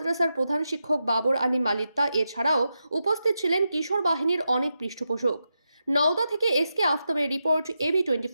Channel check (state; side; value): inverted; both; correlation -0.88